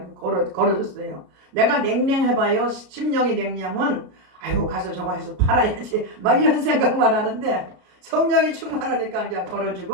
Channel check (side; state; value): left; late; 33 ms